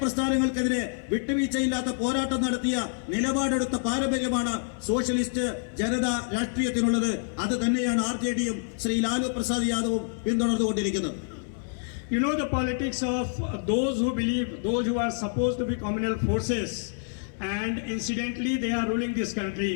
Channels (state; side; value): silent; right; 60 dB below the other